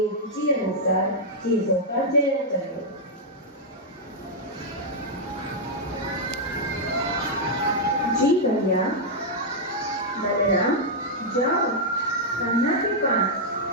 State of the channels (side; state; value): both; normal; correlation -0.05